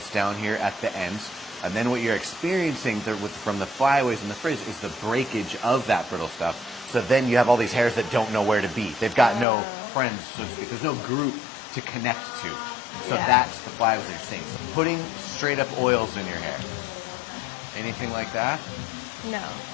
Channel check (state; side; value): drops out; right; at 9.5 s